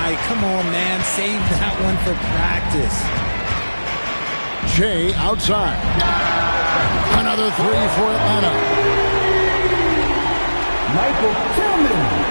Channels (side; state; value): both; inverted; correlation -1.00